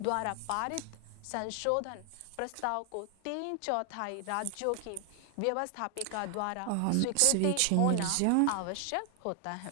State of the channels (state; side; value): different; both; correlation 0.00